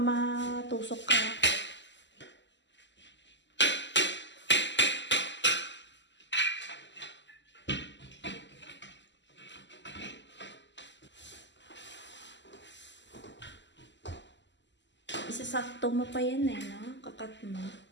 ka. Isasakto mo pa yan no? Kakat mo.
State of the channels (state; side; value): late; right; 0.53 ms